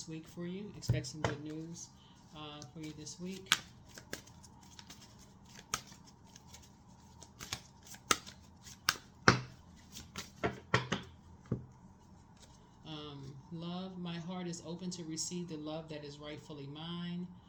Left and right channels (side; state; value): both; identical; correlation 1.00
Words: week for you. Expect some good news for you this week. Love, my heart is open to receive the love that is rightfully mine.